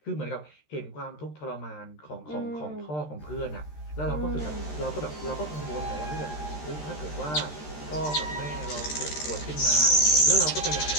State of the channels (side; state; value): right; late; 13 ms